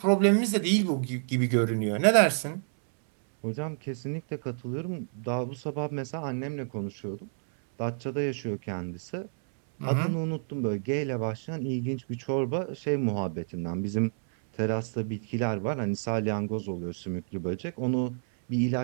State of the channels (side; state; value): left; silent; 59 dB below the other